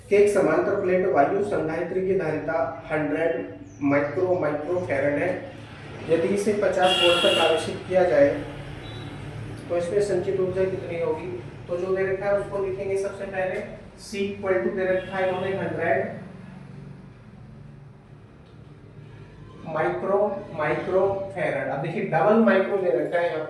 कि एक समांतर प्लेट वायु संधारित्र की धारिता 100 माइक्रो फैरड है। यदि इसे 50 वोल्ट तक आवेशित किया जाए तो इसमें संचित ऊर्जा कितनी होगी। तो जो दे रखा है उसको लिखेंगे सबसे पहले। C इक्वल टू दे रखा है इन्होंने 100 माइक्रो फैरड। अब देखिए डबल माइक्रो दे रखा है यहाँ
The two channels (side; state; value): both; identical; correlation 1.00